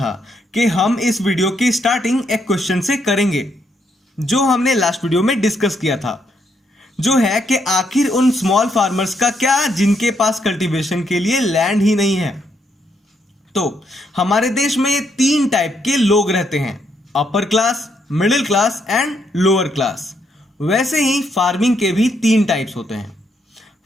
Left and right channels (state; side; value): normal; both; correlation 0.76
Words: कि हम इस वीडियो की स्टार्टिंग एक क्वेश्चन से करेंगे जो हमने लास्ट वीडियो में डिस्कस किया था, जो है कि आखिर उन स्मॉल फार्मर्स का क्या जिनके पास कल्टीवेशन के लिए लैंड ही नहीं है। तो हमारे देश में 3 टाइप के लोग रहते हैं, upper class, middle class and lower class. वैसे ही फार्मिंग के भी 3 टाइप्स होते हैं।